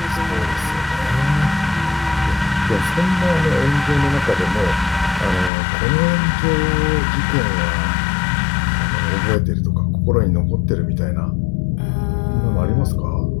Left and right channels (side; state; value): right; drops out; at 5.5 s